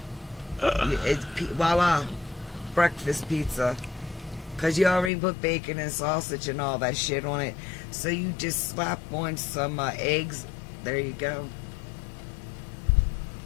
It's voila. Breakfast pizza. Because you already put bacon and sausage and all that shit on it. So you just slap on some eggs. There you go.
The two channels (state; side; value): drops out; right; at 5.1 s